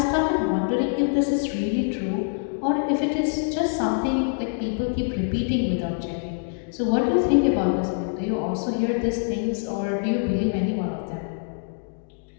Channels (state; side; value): silent; right; digital silence